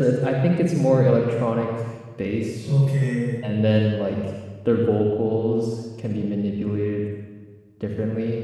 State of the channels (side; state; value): both; identical; correlation 1.00